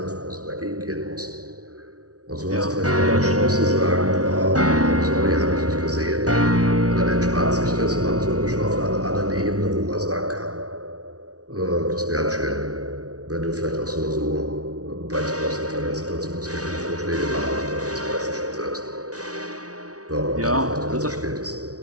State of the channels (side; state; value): left; late; 0.68 ms